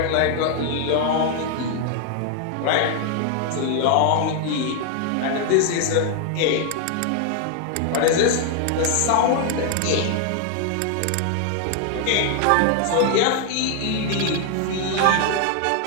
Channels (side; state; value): both; different; correlation 0.00